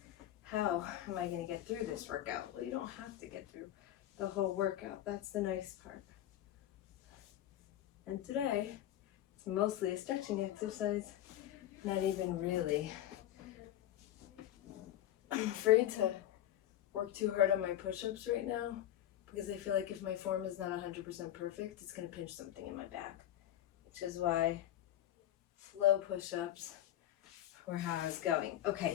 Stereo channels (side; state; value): right; quieter; 12.5 dB